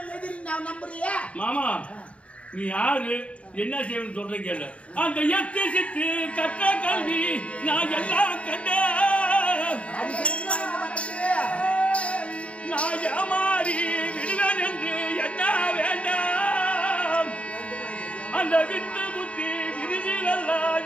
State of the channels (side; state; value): right; late; 0.062 ms